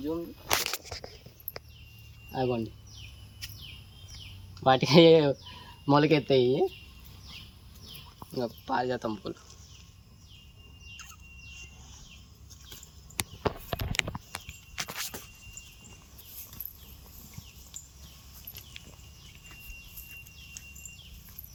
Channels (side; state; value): both; identical; correlation 1.00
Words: జూమ్ అవ్వండి. వాటికి మొలకెత్తాయి ఇంకా పారిజాతం పూలు.